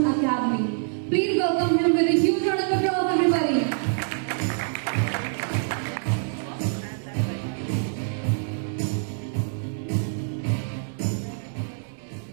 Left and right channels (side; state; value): left; silent; digital silence